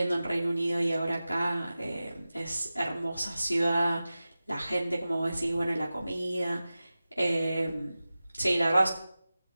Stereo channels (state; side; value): inverted; both; correlation -0.95